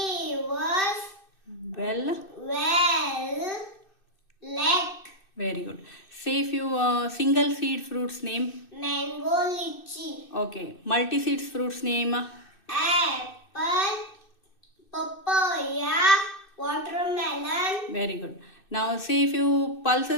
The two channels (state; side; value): late; right; 2.6 ms